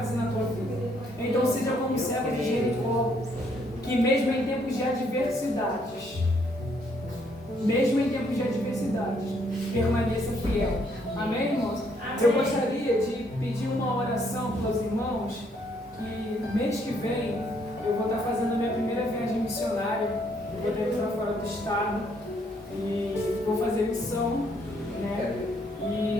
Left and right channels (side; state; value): both; normal; correlation 0.69